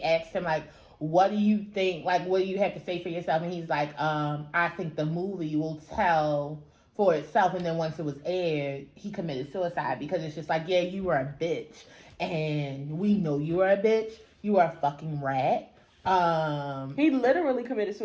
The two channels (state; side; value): identical; both; correlation 1.00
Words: asked him like, what do you think, like, what do you have to say for yourself? And he's like, I think the movie will tell for itself. And then once it was aired, he committed suicide because it's just like, yeah, you were a bitch. And we know you are a bitch. You are a fucking rat. He literally committed